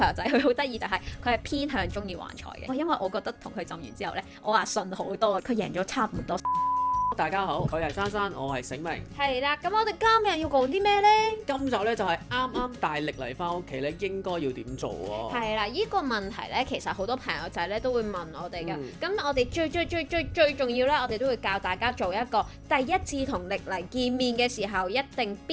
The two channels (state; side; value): identical; both; correlation 1.00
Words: 友仔佢好得意就係佢係偏向中意橫財嘅，因為我覺得同佢浸完之後呢，我話順好多，佢贏咗差唔多。大家好，佢係珊珊，我係醒明。係啦，咁我哋今日要講啲咩呢？今集咧就係啱啱大力嚟翻屋企咧，應該要點做喎？係啦，呢個問題呢，其實好多朋友仔呢都會問我哋嘅。咁我哋最重要呢，我哋都會教大家做一個第一次同歷嚟見面嘅時候，一定